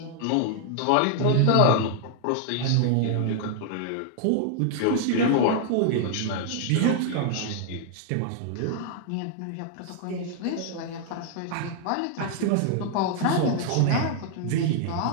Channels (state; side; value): different; both; correlation 0.00